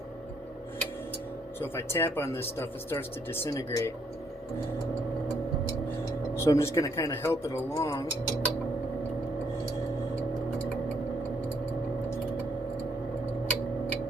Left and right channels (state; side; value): normal; both; correlation 0.70